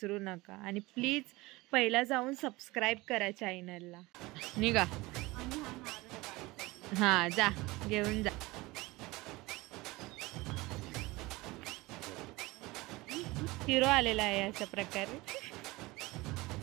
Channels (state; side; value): quieter; left; 21.5 dB